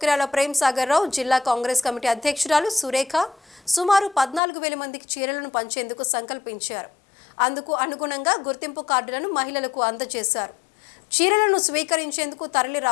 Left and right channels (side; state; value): right; drops out; at 4.4 s